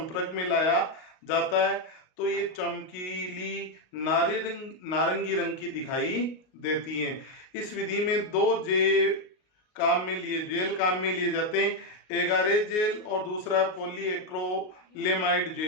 में लाया जाता है तो ये चमकीली नारंगी रंग की दिखाई देती है। इस विधि में दो जेल काम में लिए जाते हैं, एगारेज जेल और दूसरा पॉलीएक्रिलेमाइड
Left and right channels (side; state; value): right; late; 38 ms